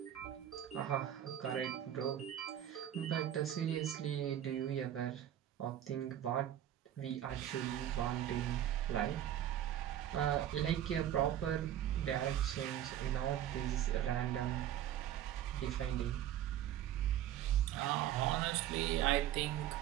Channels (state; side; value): quieter; left; 11.3 dB